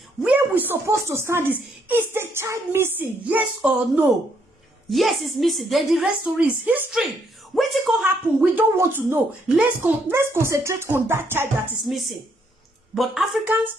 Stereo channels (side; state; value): both; normal; correlation 0.72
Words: where we supposed to stand is the child missing? Yes or no? Yes, it's missing. Then the rest story is history. What it can happen, we don't want to know. Let's concentrate on that child that is missing. But